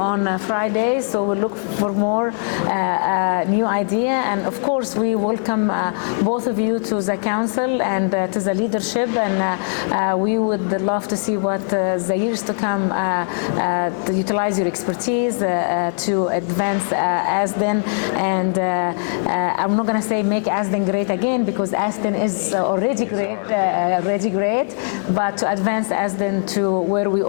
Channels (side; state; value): right; silent; digital silence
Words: Friday. So we look for more new idea, and of course we welcome both of you to the council and to the leadership, and we would love to see what the years to come to utilize your expertise to advance ASDIN, and I'm not going to say make ASDIN great again, because ASDIN is already great, but to advance ASDIN to where we